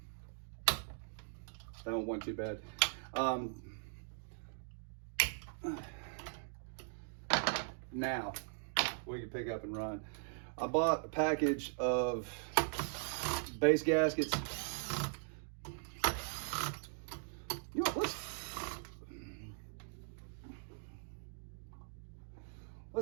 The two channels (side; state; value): left; silent; digital silence